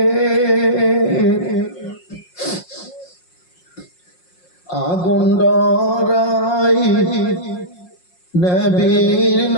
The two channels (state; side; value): late; right; 5.6 ms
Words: আগুন ডরাই নবীর